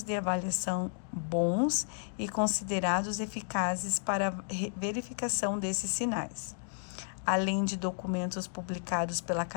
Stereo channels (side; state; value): right; silent; digital silence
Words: de avaliação bons e considerados eficazes para a verificação desses sinais, além de documentos publicados pela